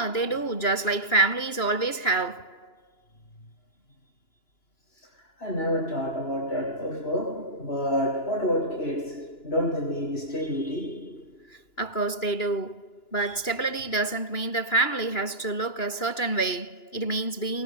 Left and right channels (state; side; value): late; right; 2.9 ms